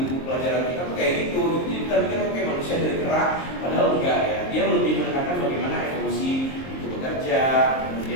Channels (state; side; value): late; right; 23 ms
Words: buku pelajaran kita tuh kayak gitu. Jadi kita pikir kayak manusia dari kera, padahal enggak ya. Dia lebih menekankan bagaimana evolusi itu bekerja,